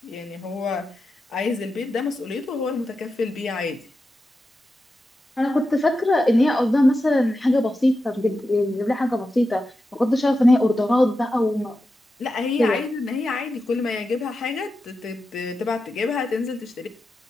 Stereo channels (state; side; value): normal; both; correlation 0.90